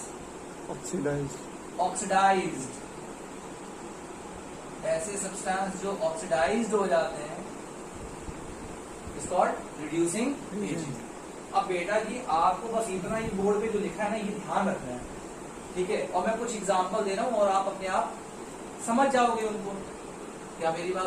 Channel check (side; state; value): both; identical; correlation 1.00